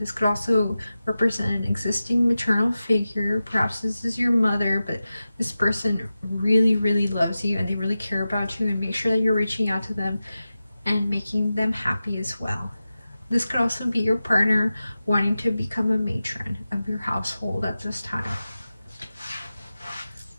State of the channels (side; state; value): both; inverted; correlation -0.93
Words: This could also represent an existing maternal figure. Perhaps this is your mother, but this person really, really loves you and they really care about you, and make sure that you're reaching out to them and making them happy as well. This could also be your partner wanting to become a matron of your household at this time.